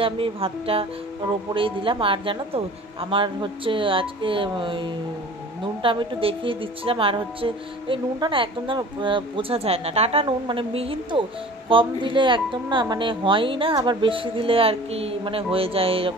আমি ভাতটা ওর ওপরেই দিলাম। আর জানো তো আমার হচ্ছে আজকে নুনটা আমি একটু দেখিয়ে দিচ্ছিলাম, আর হচ্ছে এই নুনটা না একদম যেন বোঝা যায় না, টাটা নুন মানে মিহিন তো, কম দিলে একদম না মানে হয়ই না, আবার বেশি দিলে আর কি মানে হয়ে যায়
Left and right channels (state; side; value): normal; both; correlation 0.43